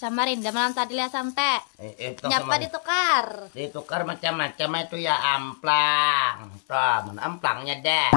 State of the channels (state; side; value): silent; right; 62 dB below the other